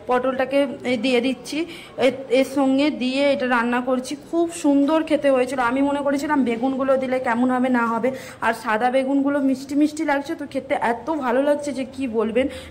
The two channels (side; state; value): both; identical; correlation 1.00